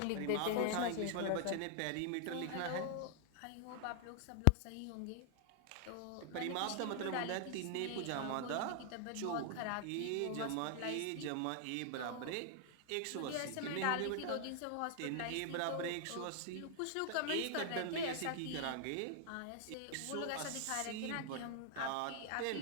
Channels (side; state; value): both; different; correlation 0.00